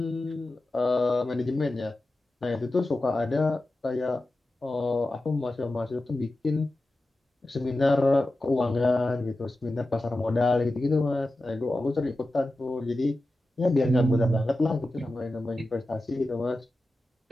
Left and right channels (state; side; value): normal; both; correlation 0.94